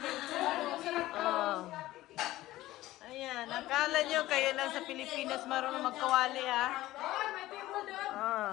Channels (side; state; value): right; quieter; 16.4 dB